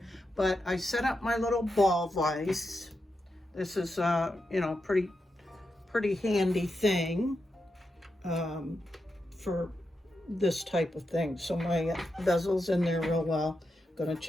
But I set up my little ball vise. This is you know, pretty handy thing for this type of thing. So my bezel's in there real well. Gonna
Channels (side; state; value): both; normal; correlation 0.87